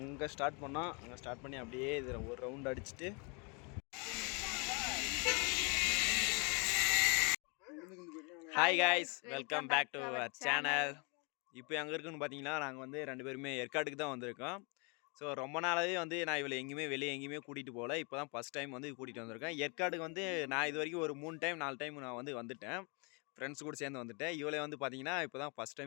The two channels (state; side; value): quieter; right; 32.9 dB